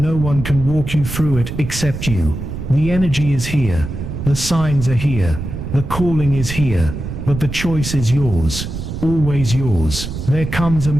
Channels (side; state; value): right; noise; rumble, 6 dB below the sound